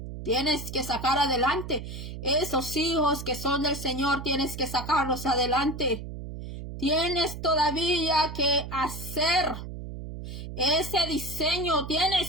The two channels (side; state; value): right; noise; hum, 9 dB below the sound